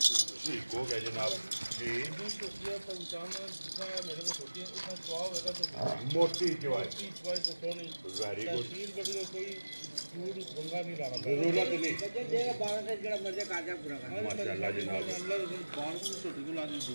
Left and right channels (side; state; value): both; inverted; correlation -1.00